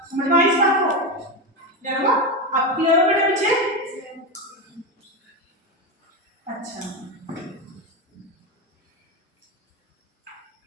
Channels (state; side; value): normal; both; correlation 0.15